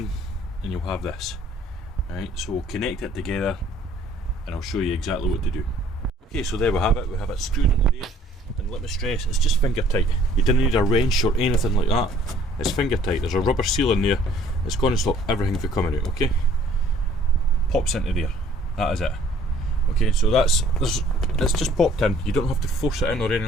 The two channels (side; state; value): both; normal; correlation 0.57